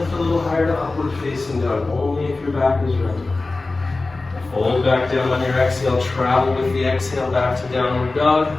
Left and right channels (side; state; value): right; quieter; 3.4 dB